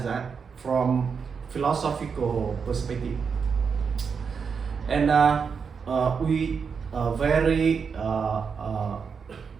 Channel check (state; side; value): quieter; left; 6.0 dB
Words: that from philosophical perspective. And we